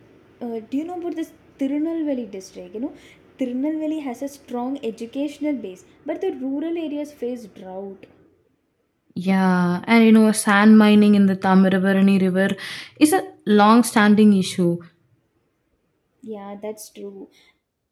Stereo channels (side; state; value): both; identical; correlation 1.00